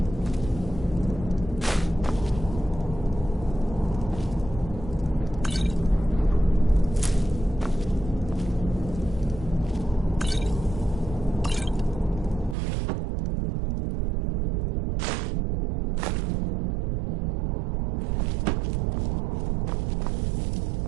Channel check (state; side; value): drops out; left; at 12.6 s